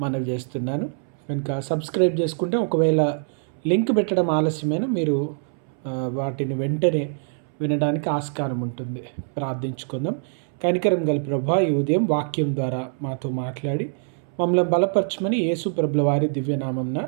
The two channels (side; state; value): left; silent; 63 dB below the other